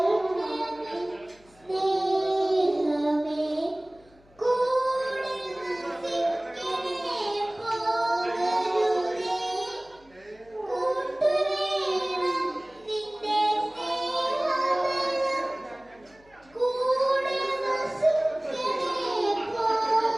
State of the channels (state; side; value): noise; left; hum, 29 dB below the sound